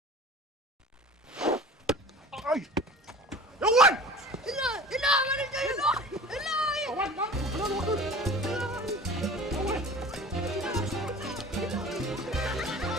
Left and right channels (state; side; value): normal; both; correlation 0.41